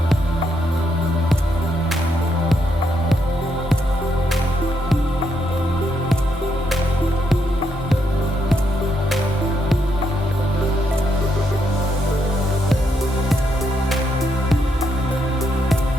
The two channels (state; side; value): normal; both; correlation 0.78